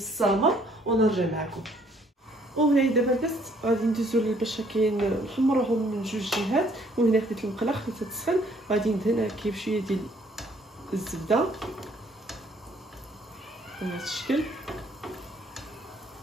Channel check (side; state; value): both; normal; correlation 0.63